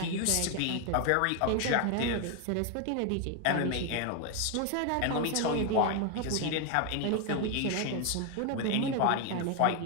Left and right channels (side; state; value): both; different; correlation 0.01